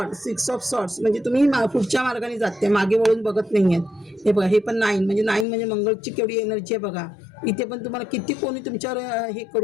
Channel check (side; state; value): right; drops out; at 5.5 s